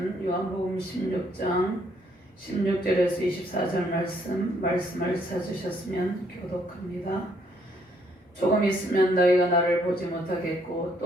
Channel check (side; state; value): both; normal; correlation 0.69